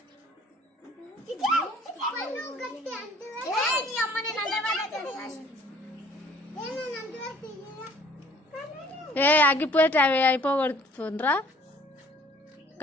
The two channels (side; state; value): both; normal; correlation 0.55